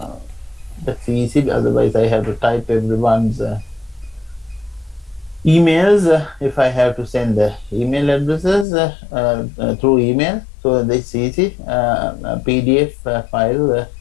That's easy, otherwise I have to type everyone's emails if I have to send the email addresses through email. So that's easy. A PDF file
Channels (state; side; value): drops out; right; at 8.7 s